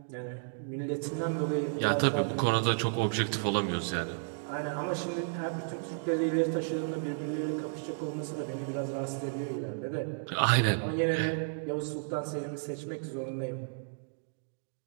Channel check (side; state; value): left; silent; digital silence